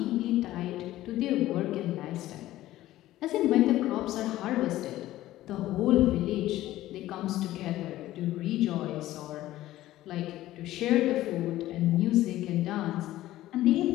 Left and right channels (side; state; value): right; quieter; 15.1 dB